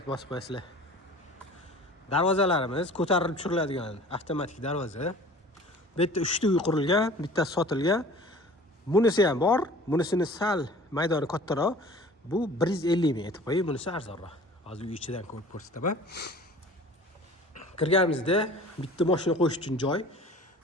bosib qo'yasizlar. Darvozalarimiz ko'tarilib tushiriladigan avtomatik darvoza. Bu yerda 3 ta uy qurilgan, bittasi sotilgan. Bunisi ham bor, bunisini sal maydoni kattaroq. Bu 150 ming aytib qo'ying, bunisi arzonroq. Hozir uy ichidan ko'rib ko'rsataman. Kirganimizda bitta mashina qo'yish uchun joy.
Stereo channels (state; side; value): normal; both; correlation 0.44